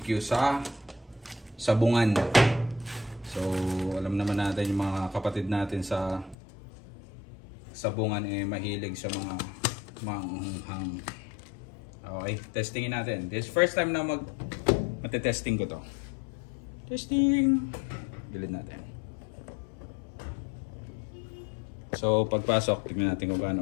sa Sabungan. So, alam naman natin yung mga kapatid natin sa Sabungan mahilig sa mga maanghang. Okay, testingin natin. This first time na matetesting ko to. Testing. Gilid natin. So, pagpasok, tignan natin kung paano.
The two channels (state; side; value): drops out; right; at 6.4 s